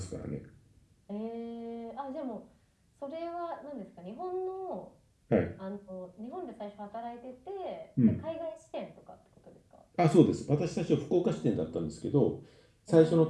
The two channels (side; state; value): both; identical; correlation 1.00